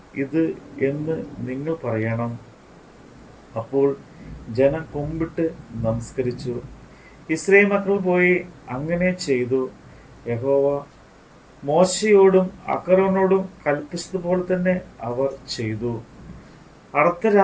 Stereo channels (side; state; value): both; identical; correlation 1.00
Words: ഇത് എന്ന് നിങ്ങൾ പറയണം. അപ്പോൾ ജനം കുമ്പിട്ട് നമസ്കരിച്ചു. ഇസ്രായേൽ മക്കൾ പോയി അങ്ങനെ ചെയ്തു. യഹോവ മോശയോടും അഹരോനോടും കൽപ്പിച്ചതുപോലെ തന്നെ അവർ ചെയ്തു.